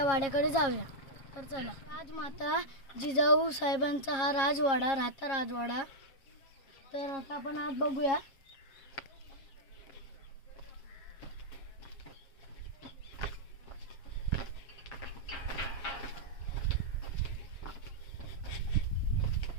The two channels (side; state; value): right; late; 7.4 ms